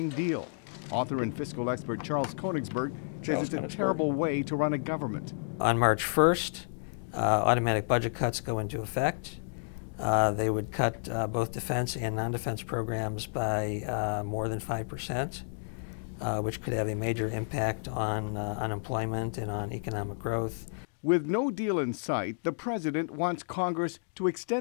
deal. Author and fiscal expert Charles Koenigsberg says it's a terrible way to run a government. On March 1st, automatic budget cuts go into effect. They would cut both defense and non-defense programs by more than 5%, which could have a major impact on unemployment and on economic growth. With no deal in sight, the president wants Congress to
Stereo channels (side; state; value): right; silent; digital silence